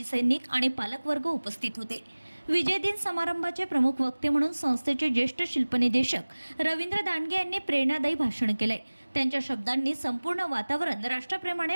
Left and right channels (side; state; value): both; inverted; correlation -1.00